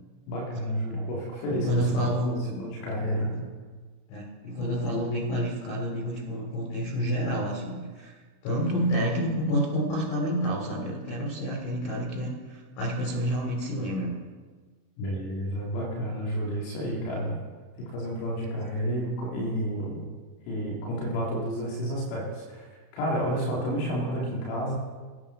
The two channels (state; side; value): late; right; 32 ms